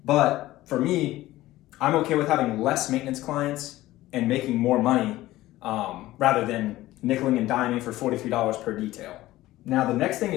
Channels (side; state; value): right; quieter; 16.5 dB